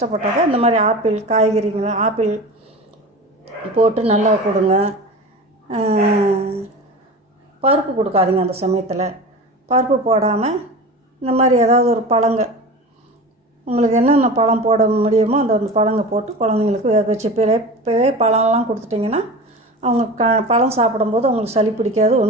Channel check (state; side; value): normal; both; correlation 0.32